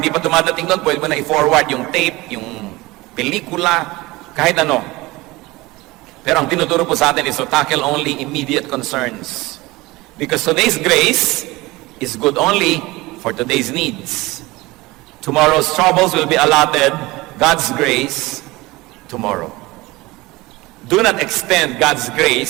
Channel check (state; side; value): quieter; left; 21.0 dB